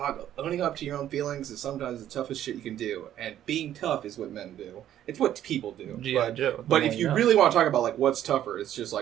owning up to your own feelings is sometimes the toughest shit you can do. And being tough is what men do. It's what people do. But if you really want to talk about, what's tougher, it's just,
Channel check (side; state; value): left; quieter; 11.5 dB